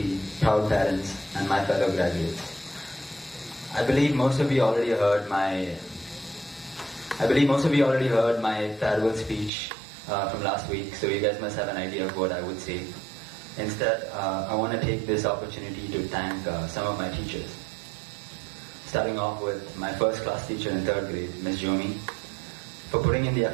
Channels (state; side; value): drops out; left; at 9.5 s